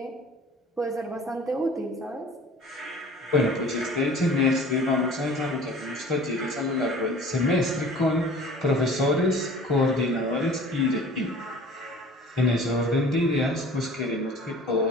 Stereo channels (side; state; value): both; normal; correlation 0.44